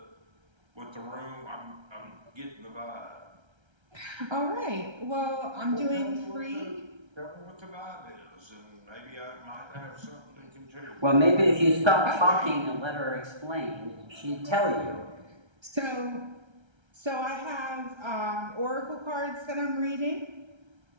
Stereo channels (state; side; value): late; left; 1.3 ms